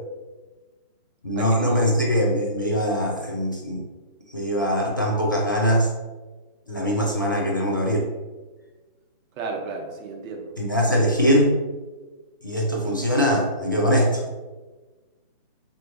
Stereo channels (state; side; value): inverted; both; correlation -0.38